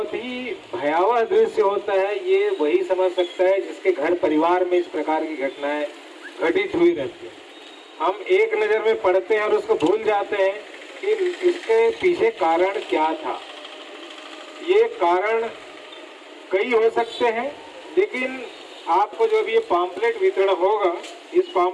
ही भयावह दृश्य होता है। ये वही समझ सकता है जिसके घर परिवार में इस प्रकार की घटनाएं घटित हुई रहती है। हम एक नज़र में पढ़ते हैं और उसको भूल जाते हैं कि इसके पीछे कारण क्या था। ये कारण कई हो सकते हैं, लेकिन आपको जो भी ये पॉम्पलेट वितरण होगा, इस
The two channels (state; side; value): identical; both; correlation 1.00